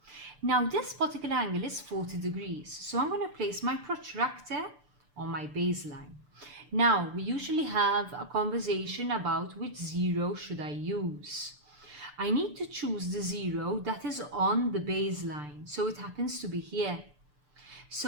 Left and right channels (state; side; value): late; left; 6.8 ms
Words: Now this particular angle is 40 degrees, so I'm going to place my protractor on my baseline. Now we usually have a conversation about which zero should I use. I need to choose the zero that is on the baseline, so it happens to be here.